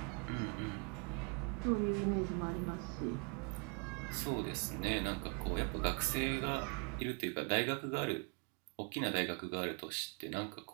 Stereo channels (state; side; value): quieter; left; 36.1 dB